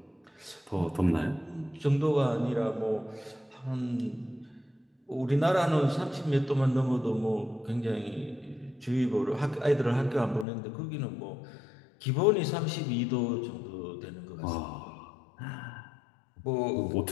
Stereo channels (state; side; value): drops out; right; at 10.5 s